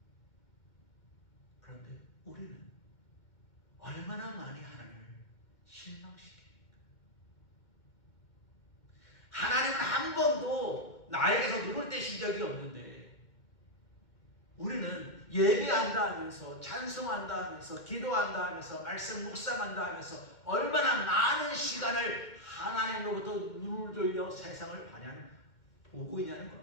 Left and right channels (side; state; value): right; late; 2.1 ms